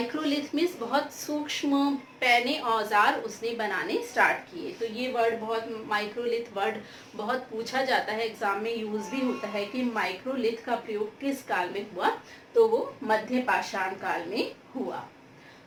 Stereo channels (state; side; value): identical; both; correlation 1.00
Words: मीन्स बहुत सूक्ष्म पैने औजार उसने बनाने स्टार्ट किए। तो ये वर्ड माइक्रोलिथ वर्ड बहुत पूछा जाता है, एग्जाम में यूज भी होता है कि माइक्रोलिथ का प्रयोग किस काल में हुआ, तो वो मध्य पाषाण काल में हुआ।